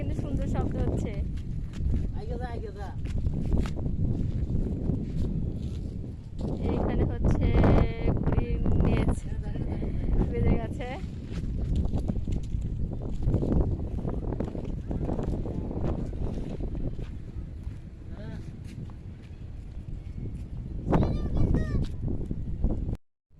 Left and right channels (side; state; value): both; identical; correlation 1.00